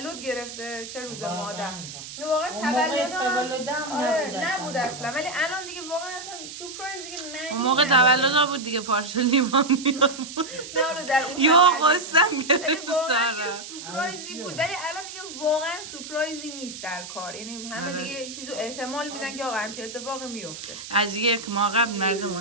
گرفته چه روز مادر. واقعا تولدم نبود اصلا. ولی الان دیگه واقعا اصلا سورپرایز دیگه نه. اون موقع تولد بود دیگه پارچه لیوان میآورد. نه اون در اون یا قسم گرفت سارا. سورپرایزی بود ولی الان دیگه واقعا سورپرایزی نیست در کار. یعنی همه دیگه یه چیزو احتمال میدن که آقا همچین اتفاقی میفته. از یک ماه قبل مردم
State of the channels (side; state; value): right; noise; hiss, 11 dB below the sound